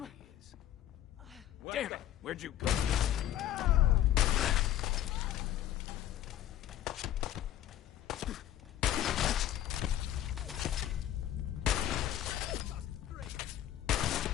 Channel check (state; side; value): quieter; right; 12.2 dB